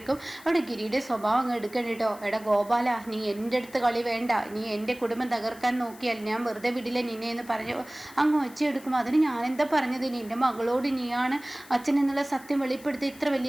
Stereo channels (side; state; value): left; noise; hiss, 21 dB below the sound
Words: അവിടെ ഗിരിയുടെ സ്വഭാവം അങ്ങ് എടുക്കണം കേട്ടോ. എടാ ഗോപാല, നീ എൻ്റെ അടുത്ത് കളി വേണ്ട. നീ എൻ്റെ കുടുംബം തകർക്കാൻ നോക്കിയാൽ ഞാൻ വെറുതെ വിടില്ല നിന്നെ എന്ന് പറഞ്ഞു അങ്ങ് ഒച്ചയെടുക്കും. അതിന് ഞാനെന്താ പറഞ്ഞത്? നിന്റെ മകളോട് നീയാണ് അച്ഛൻ എന്നുള്ള സത്യം വെളിപ്പെടുത്തി ഇത്ര